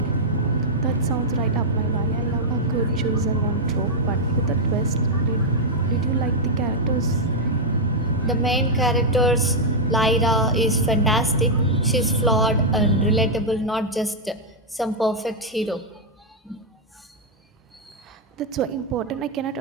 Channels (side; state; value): both; normal; correlation -0.04